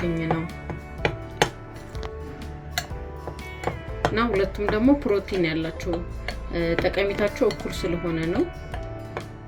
ነው። እና ሁለቱም ደግሞ ፕሮቲን ያላቸው ጠቀሜታቸው እኩል ስለሆነ ነው።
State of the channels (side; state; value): both; identical; correlation 1.00